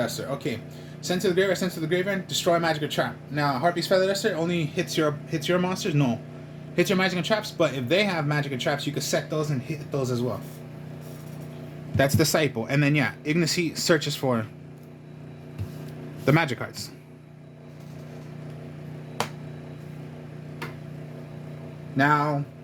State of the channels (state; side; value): identical; both; correlation 1.00